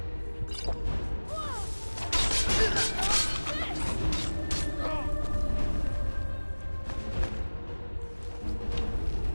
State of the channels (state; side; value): inverted; both; correlation -1.00